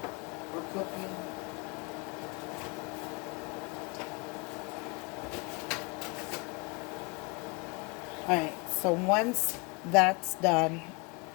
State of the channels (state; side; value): quieter; right; 29.0 dB